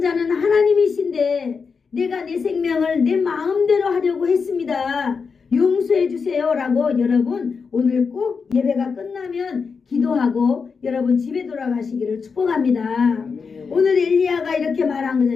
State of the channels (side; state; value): right; quieter; 5.4 dB